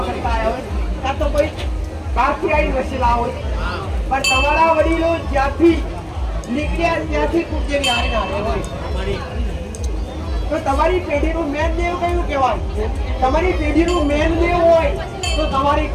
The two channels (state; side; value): identical; both; correlation 1.00